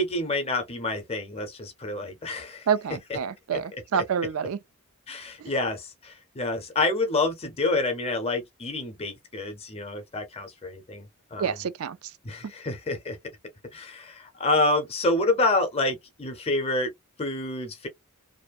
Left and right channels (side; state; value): both; normal; correlation -0.04